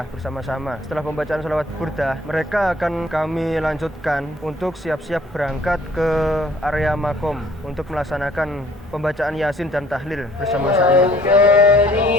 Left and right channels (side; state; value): both; normal; correlation 0.57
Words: bersama-sama. Setelah pembacaan salawat burdah, mereka akan kami lanjutkan untuk siap-siap berangkat ke area makom untuk melaksanakan pembacaan yasin dan tahlil bersama-sama.